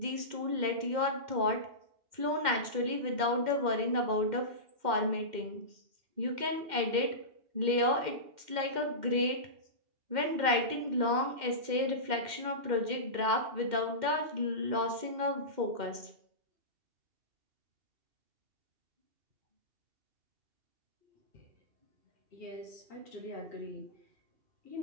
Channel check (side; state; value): left; late; 2.1 ms